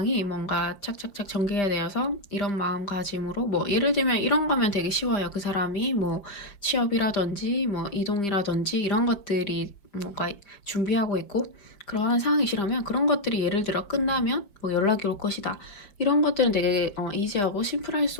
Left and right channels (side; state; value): right; late; 5.0 ms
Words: 뭔가 착착착 전개가 되어서 이런 마음가짐으로, 뭐 예를 들면 이런 거면 되게 쉬워요. 그 사람이 뭐 취업이라든지 뭐 이동이라든지 이런 것들이 뭔가 준비하고 있고 그러한 상황이시라면, 그런 것들이 예를 들어 끝나면 뭐 연락이 올 것이다, 이런 것들은 되게 이지하고 심플할